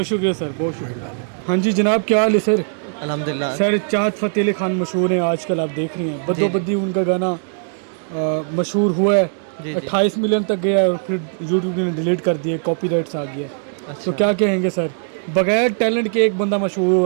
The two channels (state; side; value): silent; left; 66 dB below the other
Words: शुक्रिया सर, बहुत शुक्रिया। हाँ जी जनाब, क्या हाल है सर? अल्हम्दुलिल्लाह। सर, चाहत फ़तेह अली खान मशहूर हैं आजकल, आप देख रही हैं, बदो बदी उनका गाना मशहूर हुआ है, 28 मिलियन तक गया है, और फिर यूट्यूब ने डिलीट कर दिए, कॉपीराइट्स आ गया। तो क्या कहेंगे सर, बगैर टैलेंट के एक बंदा मशहूर